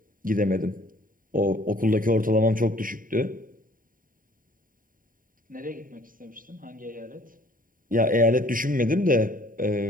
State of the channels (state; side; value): late; left; 0.40 ms